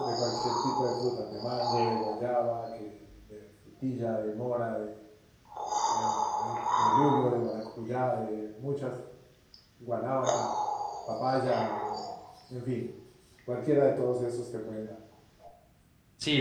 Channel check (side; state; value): both; identical; correlation 1.00